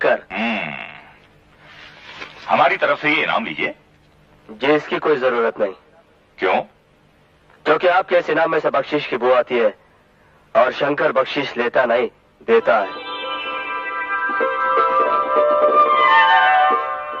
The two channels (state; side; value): identical; both; correlation 1.00